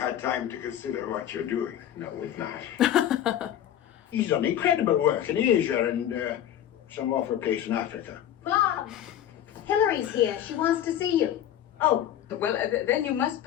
had time to consider what you're doing. No, we've not. He's done incredible work in Asia and some awful place in Africa. Mom, Hillary's here. She wants to see you. Oh, Well, then you must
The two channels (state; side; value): quieter; right; 11.0 dB